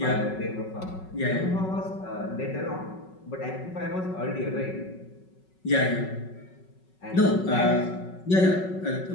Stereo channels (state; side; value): late; right; 5.4 ms